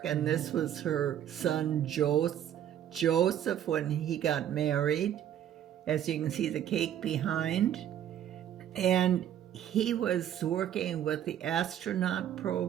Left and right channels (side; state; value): left; quieter; 10.5 dB